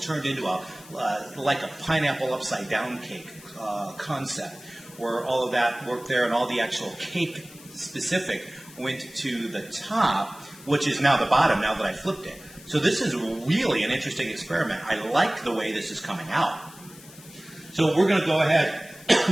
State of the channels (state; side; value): noise; left; hiss, 20 dB below the sound